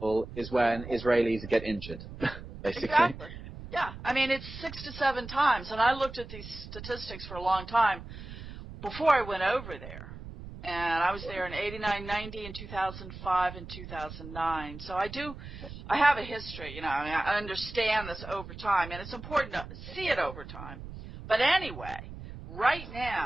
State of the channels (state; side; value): noise; right; rumble, 12 dB below the sound